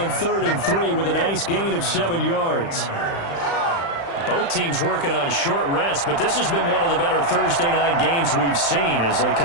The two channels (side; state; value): right; late; 35 ms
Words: 3rd and 3 with a nice gain of 7 yards. Both teams working on short rest, but this has been one of the better Thursday night games we've seen as they